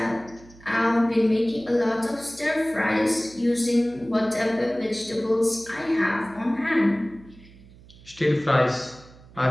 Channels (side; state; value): right; noise; hum, 23 dB below the sound